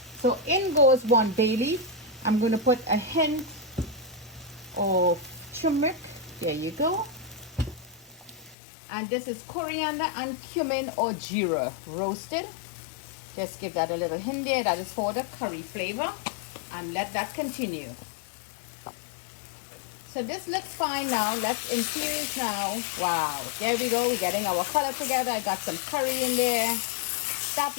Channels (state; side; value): drops out; right; at 8.6 s